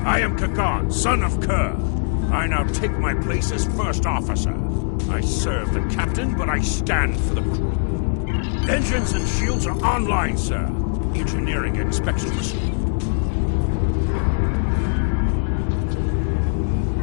I am Kagan, son of Kerr. I now take my place as first officer. I serve the captain, but I stand for the crew. Engines and shields are online, sir. Engineering expects to receive.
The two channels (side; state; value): right; silent; 63 dB below the other